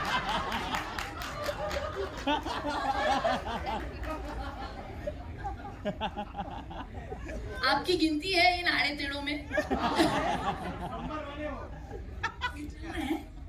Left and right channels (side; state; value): both; identical; correlation 1.00